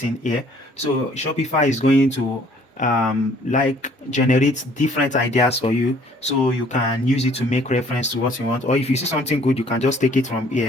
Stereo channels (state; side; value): normal; both; correlation 0.58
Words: here. So Shopify is going to like generate different ideas for you, so you can use it to make reference to what you want, or if you see something good, you can just take it from